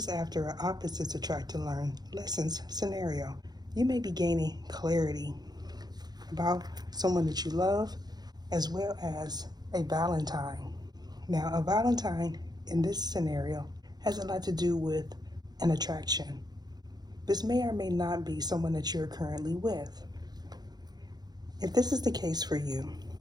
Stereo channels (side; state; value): left; late; 0.19 ms